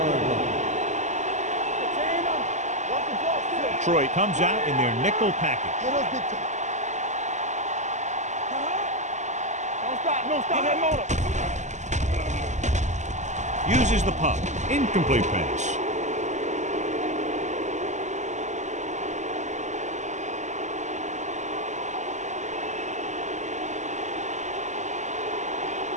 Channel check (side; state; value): left; late; 0.34 ms